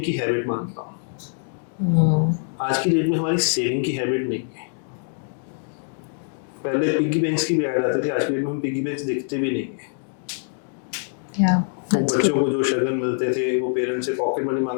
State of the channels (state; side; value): silent; right; digital silence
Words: की हैबिट मानता हूँ। आज की डेट में हमारी सेविंग की हैबिट नहीं है। पहले पिग्गी बैंक्स की भी ऐड आती थी, आज की डेट में हम पिग्गी बैंक्स दिखते भी नहीं है। वो बच्चों को जो शगन मिलते थे वो पेरेंट्स से पॉकेट मनी